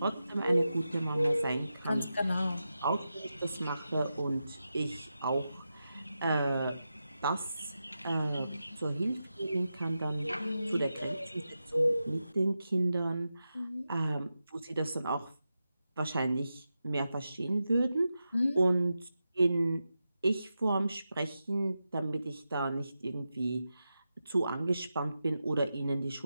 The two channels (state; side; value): inverted; both; correlation -0.90